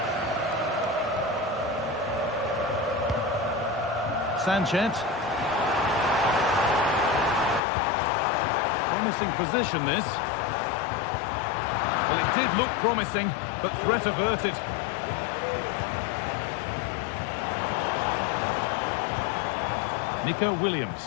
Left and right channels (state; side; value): drops out; right; at 7.6 s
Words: Sanchez. Promising position, this. Well, it did look promising, but threat averted. Nico